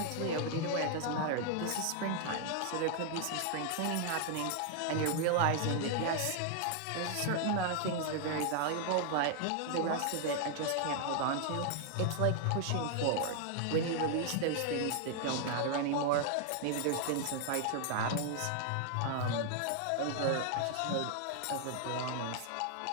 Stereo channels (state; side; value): different; both; correlation 0.00